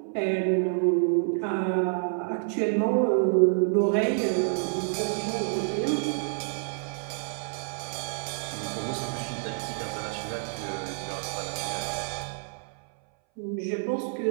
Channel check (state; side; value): silent; left; 59 dB below the other